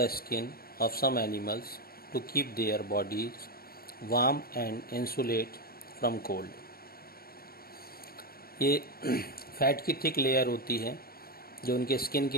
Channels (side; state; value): right; late; 0.44 ms